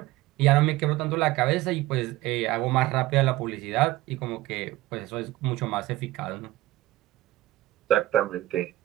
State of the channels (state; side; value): quieter; left; 16.7 dB